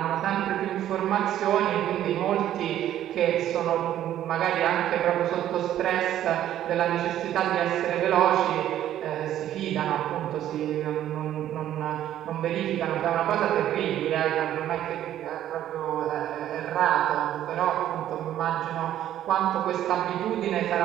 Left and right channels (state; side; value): quieter; left; 11.9 dB